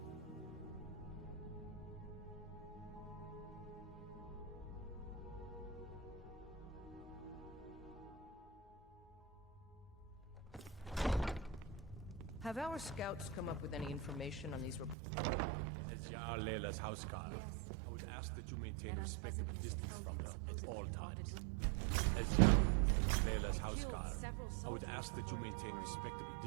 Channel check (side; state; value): left; drops out; at 15.0 s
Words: Have our scouts come up with any information on these reports of dragons? As Jarl Layla's housecarl, I would ask that you maintain respectable distance from her at all times. As Jarl Layla's housecarl, I would ask that you maintain respectable